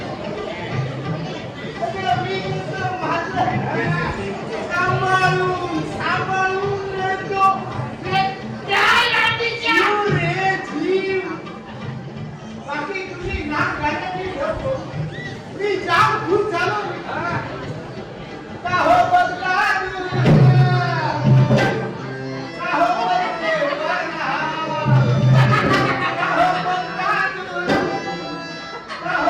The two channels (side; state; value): both; identical; correlation 1.00